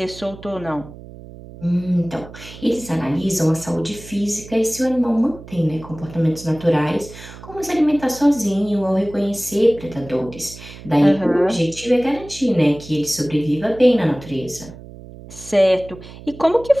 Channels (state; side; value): noise; right; hum, 16 dB below the sound